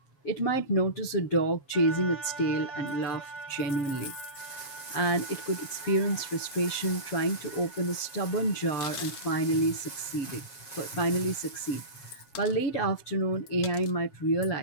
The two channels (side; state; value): right; late; 7.4 ms